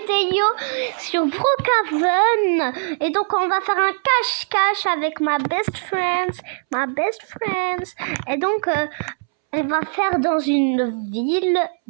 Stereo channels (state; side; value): silent; left; 65 dB below the other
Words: sur Brookhaven. Et donc on va faire un cache-cache avec ma best friend. Et donc elle va faire dans une ville,